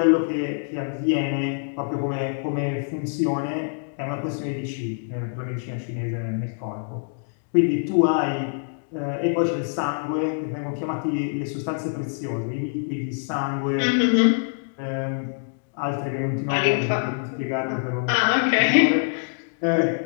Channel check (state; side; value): silent; right; digital silence